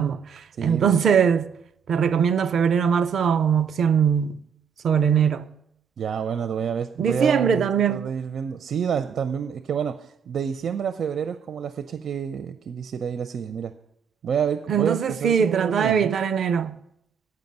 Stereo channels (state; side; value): quieter; left; 7.0 dB